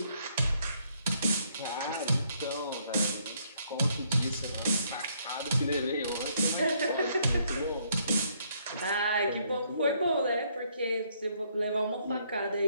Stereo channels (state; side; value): inverted; both; correlation -0.69